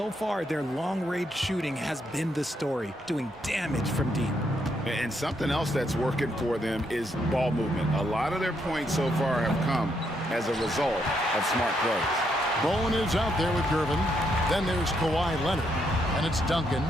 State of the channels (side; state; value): both; normal; correlation 0.76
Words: far, their long-range shooting has been the story, doing damage from deep. And something else that's working for them is ball movement. A lot of their points so far have come as a result of smart plays. Bowen is out there with Gervin. Then there's Kawhi Leonard. And it's Duncan.